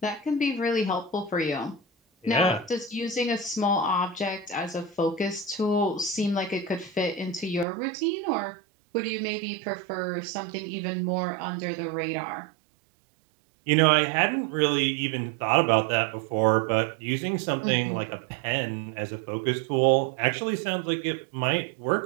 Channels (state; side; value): drops out; left; at 7.7 s